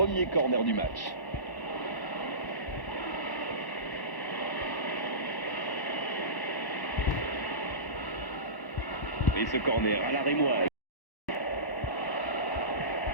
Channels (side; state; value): right; late; 1.1 ms